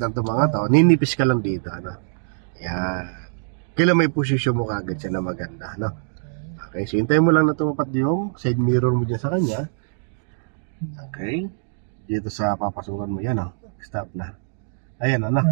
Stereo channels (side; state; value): left; silent; digital silence